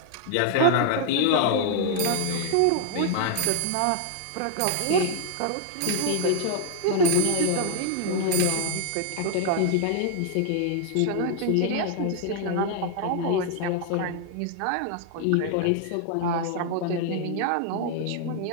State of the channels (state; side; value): different; both; correlation 0.00